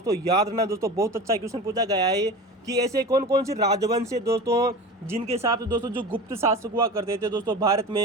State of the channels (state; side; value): normal; both; correlation 0.32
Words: याद रखना दोस्तों, बहुत अच्छा क्वेश्चन पूछा गया है कि ऐसे कौन कौन से राजवंश है दोस्तों जिनके साथ दोस्तों जो गुप्त शासक हुआ करते थे दोस्तों भारत